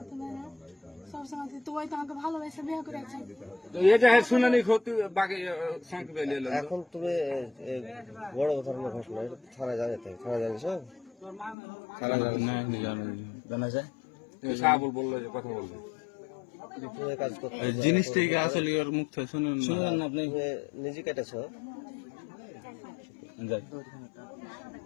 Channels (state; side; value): drops out; right; at 11.6 s